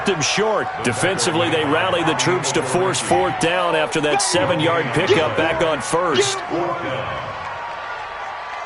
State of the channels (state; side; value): identical; both; correlation 1.00